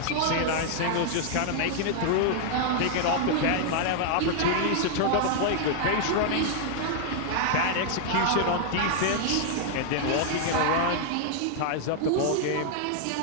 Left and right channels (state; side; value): different; both; correlation 0.00